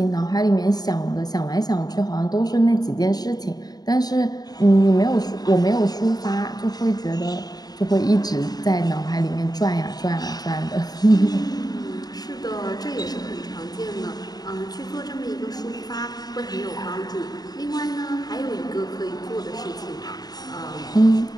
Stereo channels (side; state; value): right; late; 0.19 ms